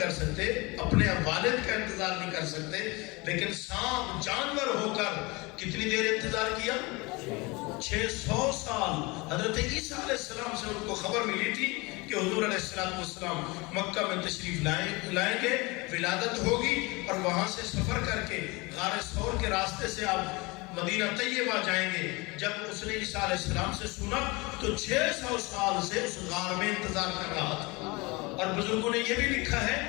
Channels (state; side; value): quieter; right; 25.3 dB